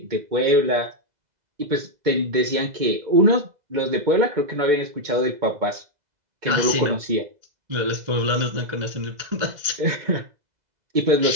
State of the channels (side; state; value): left; late; 2.0 ms